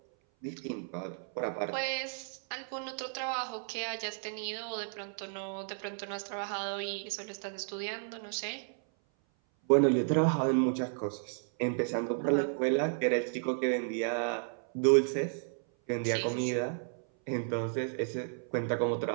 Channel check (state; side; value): silent; left; 56 dB below the other